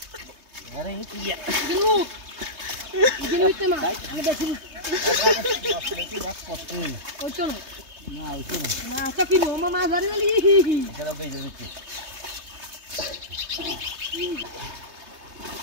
আরে কি গিলু ইতে মা আমি দেখি ওই চলো না তো কি মামা ধরে গলি চলো বে দিচ্ছি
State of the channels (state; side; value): late; left; 3.2 ms